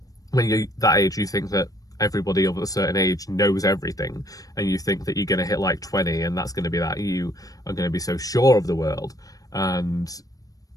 when you're that age, you think that everybody of a certain age knows everything, and you think that you're going to hit like 20 and that's going to be that you are going to be so sure of the world. And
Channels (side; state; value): right; late; 0.18 ms